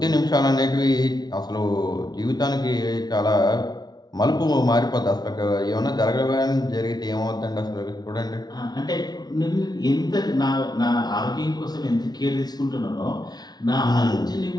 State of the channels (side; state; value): right; late; 0.19 ms